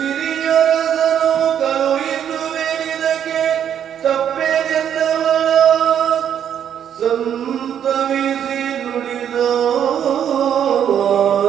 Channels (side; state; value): left; quieter; 9.2 dB